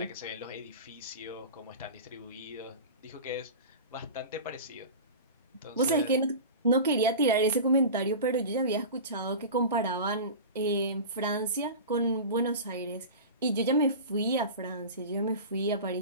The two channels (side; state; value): both; inverted; correlation -0.31